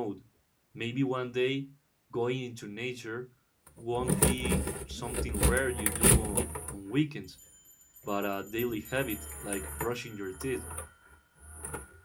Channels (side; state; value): both; identical; correlation 1.00